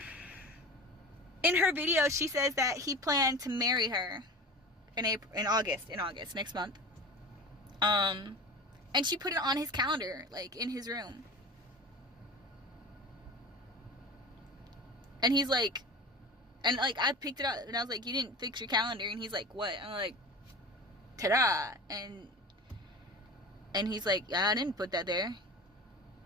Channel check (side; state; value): both; normal; correlation 0.33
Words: In her video, she says that he planned to marry her in August, next month. And she put it on his calendar, like, in his room. And he's like, and like, I picked it up, and I was like, you didn't fix your calendar, and he's like, what? I'm like, ta-da, and he's like, yeah, I didn't put that there.